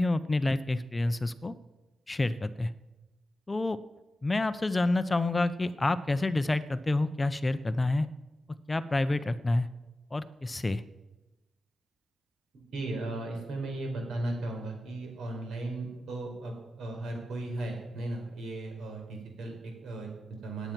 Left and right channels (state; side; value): normal; both; correlation 0.94